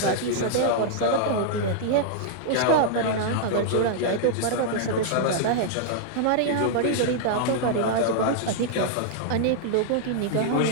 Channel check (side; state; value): both; different; correlation -0.01